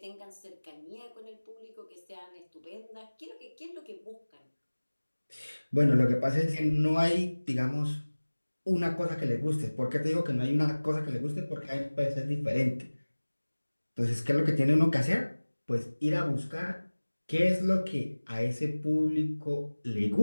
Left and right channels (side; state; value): both; inverted; correlation -1.00